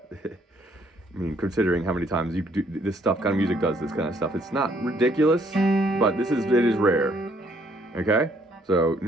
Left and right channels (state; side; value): normal; both; correlation 0.66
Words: mean, considering how many times you do this stuff, kind of music does this kind of stuff, it's not ridiculous, but it is rare, okay? So